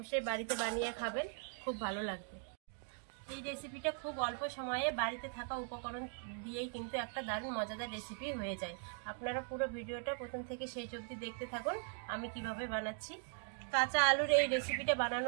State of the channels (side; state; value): left; silent; 51 dB below the other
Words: বাড়িতে বানিয়ে খাবেন, খুব ভালো লাগবে। এই রেসিপিটা খুব অল্প সময়ে বাড়িতে থাকা উপকরণ দিয়েই কিন্তু একটা দারুণ মজাদার রেসিপি হয়ে যায়। আপনারা পুরো ভিডিওটা প্রথম থেকে শেষ অবধি দেখতে থাকুন আমি কিভাবে বানাচ্ছি। কাঁচা আলুর এই রেসিপিটা